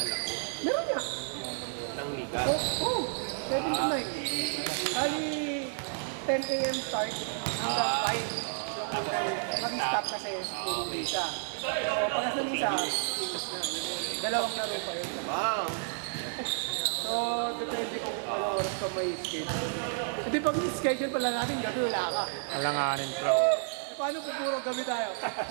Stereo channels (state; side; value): silent; left; digital silence